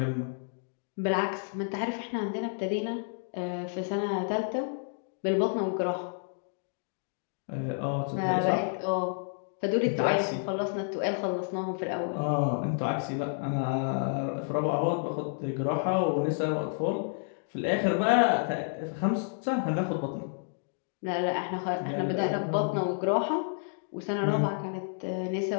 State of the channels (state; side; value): silent; right; digital silence